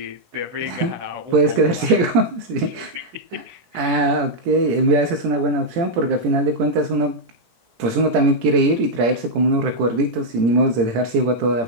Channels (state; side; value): late; left; 17 ms